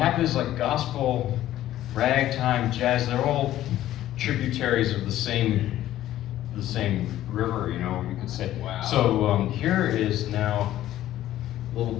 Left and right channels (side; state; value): right; quieter; 13.5 dB